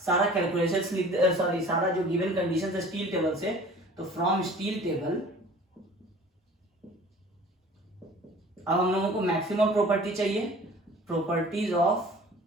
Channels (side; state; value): both; normal; correlation 0.46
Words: सारा कैलकुलेशन सारा जो गिवन कंडीशन है स्टील टेबल से, तो फ्रॉम स्टील टेबल अब हम लोगों को मैक्सिमम प्रॉपर्टी चाहिए, प्रॉपर्टीज ऑफ